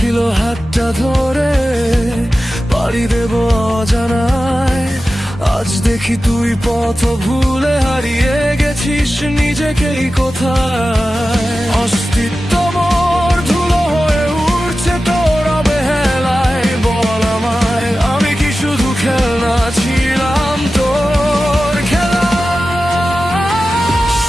হাতটা ধরে পাড়ি দেব অজানায়, আজ দেখি তুই পথ ভুলে হারিয়ে গেছিস নিজেকেই কোথায়। অস্তিত্ব মোর ধুলো হয়ে উঠছে তোর অবহেলায়, বল আমায় আমি কি শুধু খেলনা ছিলাম তোর খেলা?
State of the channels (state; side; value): normal; both; correlation 0.94